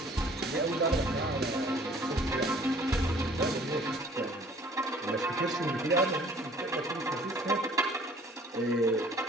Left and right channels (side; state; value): both; normal; correlation 0.54